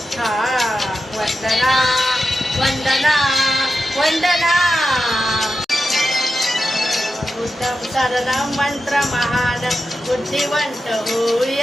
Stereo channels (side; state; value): both; normal; correlation 0.90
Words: हा वंदना वंदना वंदना उत्तम शरणं मंत्र महान बुद्धिवंत